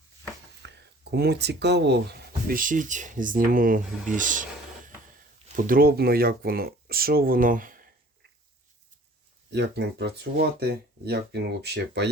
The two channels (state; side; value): normal; both; correlation 0.51